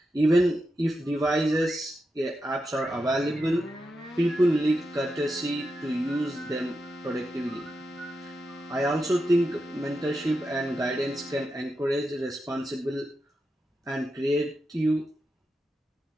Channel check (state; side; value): normal; both; correlation 0.88